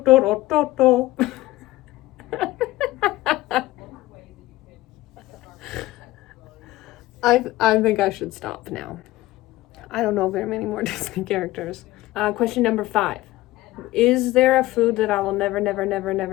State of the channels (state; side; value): quieter; right; 17.5 dB